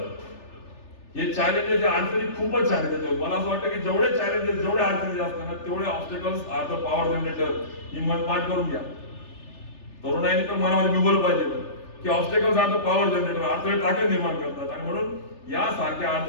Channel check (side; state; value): right; late; 3.4 ms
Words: हे चॅलेंजेस, अडचणी खूपच छान आहे त्याच्यावर. मला असं वाटतं की जेवढे चॅलेंजेस, जेवढे अडचणी असतात ना, तेवढे obstacles are the power generator. ही मन पाठ करून घ्या. तरुणाईने तर मनामध्ये बिंबवलं पाहिजे की obstacles are the power generator, अडथळे ताकद निर्माण करतात. आणि म्हणून यासारख्या